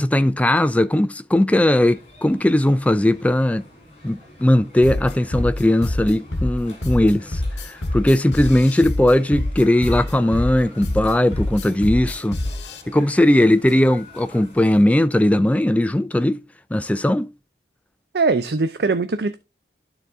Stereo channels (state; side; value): normal; both; correlation 0.92